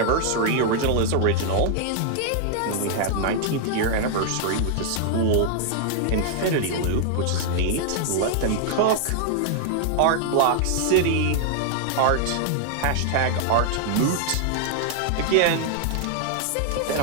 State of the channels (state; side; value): different; both; correlation 0.00